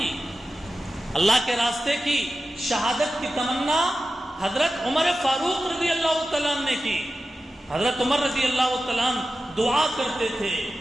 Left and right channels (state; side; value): normal; both; correlation 0.93